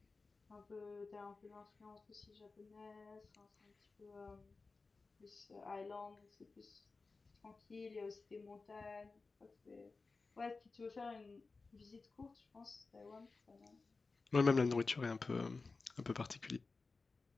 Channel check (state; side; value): quieter; right; 4.0 dB